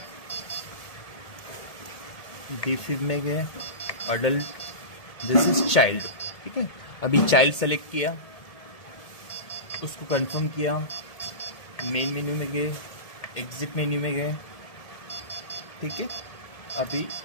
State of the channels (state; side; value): late; right; 1.7 ms